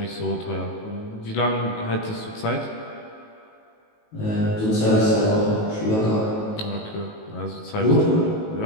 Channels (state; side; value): late; right; 19 ms